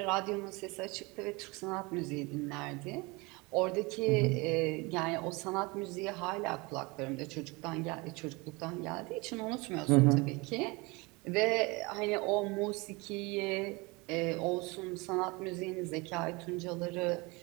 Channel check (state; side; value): quieter; left; 25.8 dB